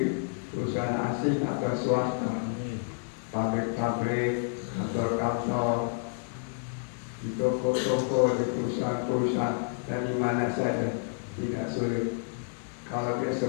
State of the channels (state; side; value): silent; right; digital silence